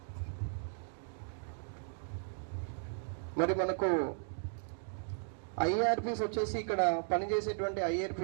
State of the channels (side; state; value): left; silent; digital silence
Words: మరి మనకు ఐఆర్పీస్ వచ్చేసి ఇక్కడ పనిచేసేటువంటి